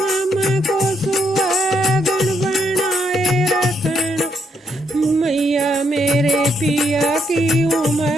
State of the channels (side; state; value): both; normal; correlation 0.76